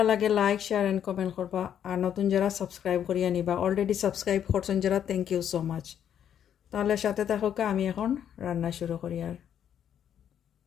লাগে লাইক শেয়ার অ্যান্ড কমেন্ট করবা। আর নতুন যারা সাবস্ক্রাইব করিয়া নিবা, অলরেডি সাবস্ক্রাইব করছেন যারা, থ্যাংক ইউ সো মাচ। তাহলে সাথে থাকুক, আমি এখন রান্না শুরু করি। আর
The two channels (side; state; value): right; quieter; 9.4 dB